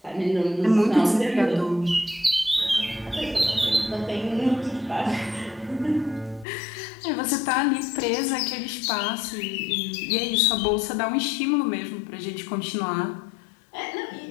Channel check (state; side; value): drops out; right; at 6.5 s